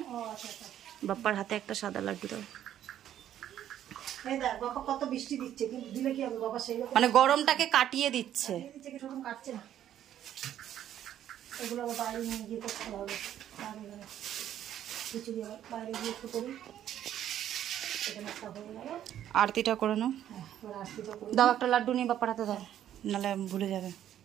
বাপ্পার হাতে একটা সাদা লাড্ডু দাও। কত বৃষ্টি দিচ্ছে, কিন্তু দিলে কি হবে বাবা, সেই মানে গরমটাকে কাটিয়ে দিচ্ছে। কাটছে না, এগুলো আবার বাইরে নিয়ে গিয়ে করতে হবে। কিছু বাইরে গিয়ে একটু করি, আরতিটা করে নাও। দাও একটা লাড্ডু নিয়ে বাপ্পার হাতে দাও, নাহলে ভুলে যাবে।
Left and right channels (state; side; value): quieter; left; 11.1 dB